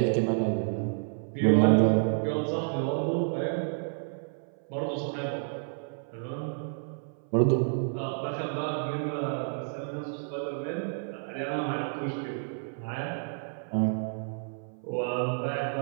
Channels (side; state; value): left; silent; 56 dB below the other